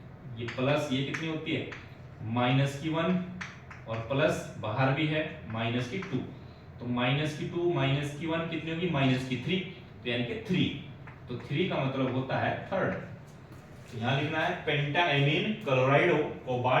ये प्लस, ये कितनी होती है -1, और प्लस बाहर भी है -2, तो -2 -1 कितनी होगी -3, तो यानी कि 3, तो 3 का मतलब होता है थर्ड। तो यहाँ लिखना है पेंटाएमीन क्लोराइडो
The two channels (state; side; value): identical; both; correlation 1.00